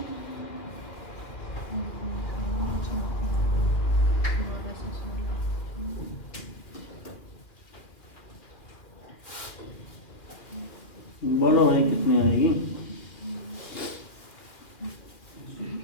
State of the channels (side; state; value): right; late; 2.2 ms